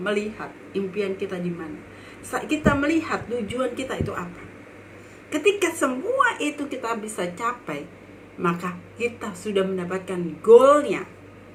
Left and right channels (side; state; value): both; identical; correlation 1.00